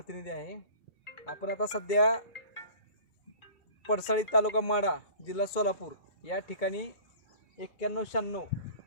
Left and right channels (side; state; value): right; late; 2.2 ms